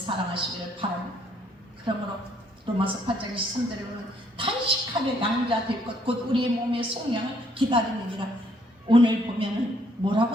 바랍니다. 그러므로 로마서 8장 23절에 보면 탄식하며 양자 될 것 곧 우리의 몸의 속량을 기다리느니라. 오늘 보면은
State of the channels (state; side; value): normal; both; correlation 0.67